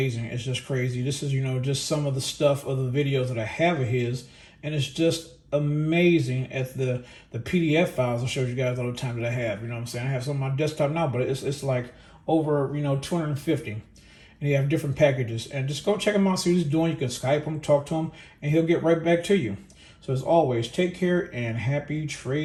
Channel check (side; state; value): both; identical; correlation 1.00